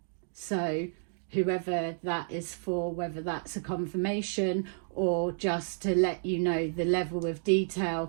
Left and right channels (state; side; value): silent; left; digital silence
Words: So whoever that is for, whether that's a confirmation or just to let you know the level of